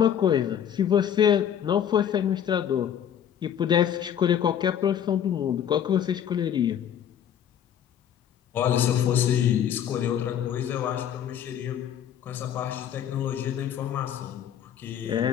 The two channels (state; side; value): quieter; right; 9.3 dB